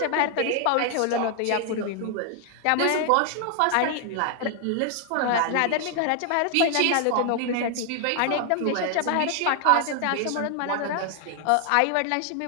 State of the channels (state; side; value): different; both; correlation 0.00